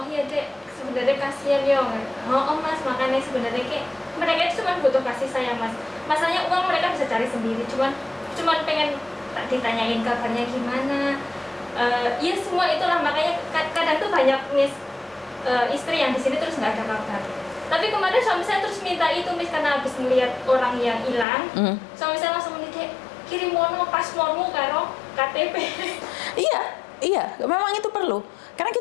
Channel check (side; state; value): right; drops out; at 21.2 s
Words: iya dek, sebenarnya kasihan ya. Oh Mas, makanya sebenarnya kayak mereka itu cuma butuh kasih sayang Mas. Masalahnya uang mereka bisa cari sendiri, cuman pengen tak ditanyain kabarnya gimana. Ya semua itulah, makanya kadang tuh banyak Miss istri yang di sini terus nggak ada kabar. Tapi kemarin suami saya terus minta itu Miss, karena habis melihat orang yang hilang. Suami saya langsung menitip kirim mono paspormu karo KTP. Iya, memang itu perlu. Karena